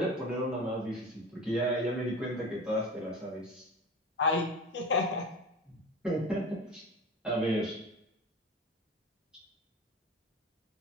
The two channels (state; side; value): normal; both; correlation 0.33